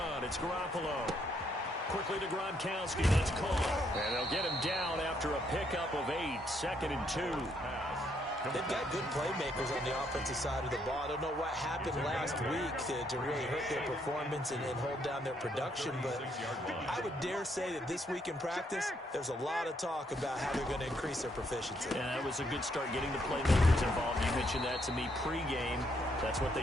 it's Garoppolo. Quickly to Gronkowski. That's caught. And they'll get him down after a pickup of 8. 2nd and 2. They've got good playmakers on the offensive side of the ball. I don't know what happened last week to really hurt their performance and hold down their production, but I would dare say that this week in practice, there's a lot of talk about how they're going to increase their proficiency. Yeah, that was a good start getting the playmakers involved. You mentioned that to me pregame. That's what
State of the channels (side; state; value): both; normal; correlation 0.73